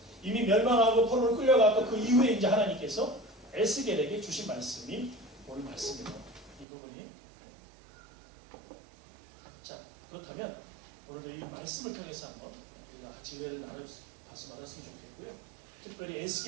이미 멸망하고 포로를 끌려가고 그 이후에 이제 하나님께서 에스겔에게 주신 말씀이 오늘 말씀입니다. 이 부분이. 자, 그렇다면 오늘도 이 말씀을 통해서 한번 우리가 같이 은혜를 나눠서 말았으면 좋겠고요. 특별히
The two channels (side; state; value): left; drops out; at 6.7 s